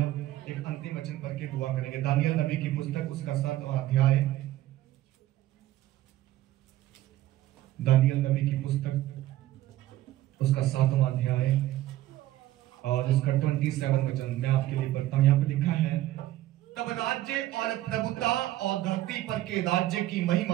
एक अंतिम वचन पढ़ के दुआ करेंगे। दानियल नबी की पुस्तक, उसका 7वां अध्याय, दानियल नबी की पुस्तक, उसका 7वां अध्याय और उसका 27 वचन मैं आपके लिए पढ़ता हूं। यहाँ पे लिखा है, तब राज्य और प्रभुता और धरती पर के राज्य की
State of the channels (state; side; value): quieter; left; 14.7 dB